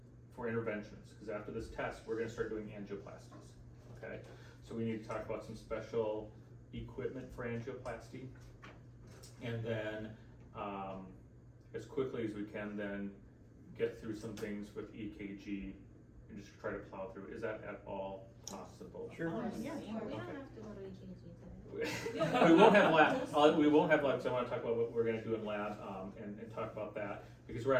for interventions. Because after this test, we're going to start doing angioplasties. Okay, so we need to talk about some special equipment for angioplasty, and then as quickly as we can, then get through some things with EKG and just try to plow through. Is that at all possible? Sure. Yeah. We don't Okay. have to go to EKG today. We won't have lab. We won't have lab. So I want to talk about what we're going to do in lab and talk about that, because we're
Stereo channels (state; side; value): identical; both; correlation 1.00